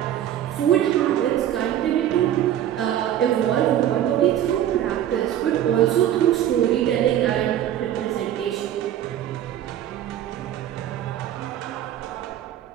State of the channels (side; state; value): left; quieter; 11.3 dB